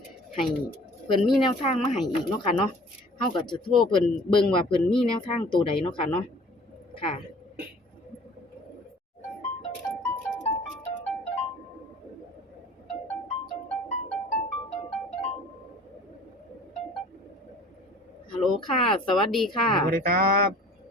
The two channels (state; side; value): normal; both; correlation 0.49